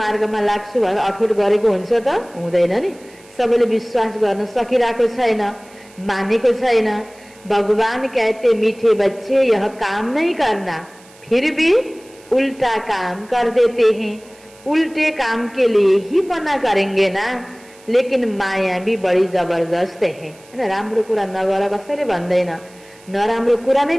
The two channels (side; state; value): right; noise; hiss, 26 dB below the sound